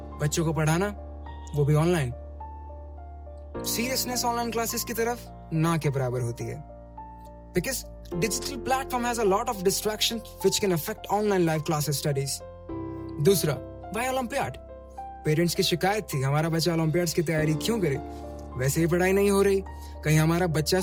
बच्चों को पढ़ाना, वो भी ऑनलाइन। सीरियसनेस ऑनलाइन क्लासेस की तरफ ना के बराबर होती है, because digital platform has a lot of distraction which can affect online live classes studies. दूसरा, why Olympiad? पेरेंट्स की शिकायत थी हमारा बच्चा ओलंपियाड्स की तैयारी क्यों करे, वैसे ही पढ़ाई नहीं हो रही, कहीं हमारा बच्चा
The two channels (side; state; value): both; identical; correlation 1.00